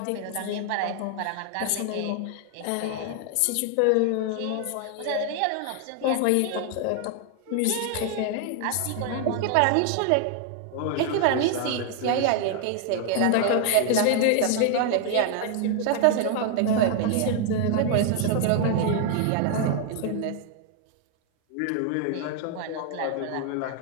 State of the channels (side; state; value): both; different; correlation 0.00